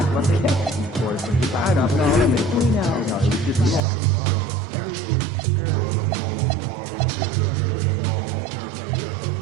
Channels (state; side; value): drops out; left; at 3.8 s